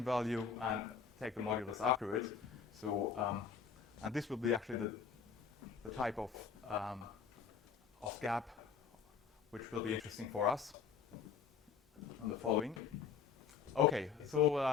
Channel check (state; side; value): quieter; right; 6.6 dB